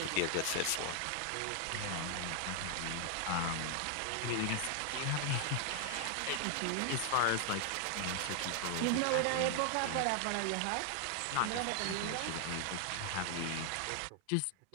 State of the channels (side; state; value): both; different; correlation 0.00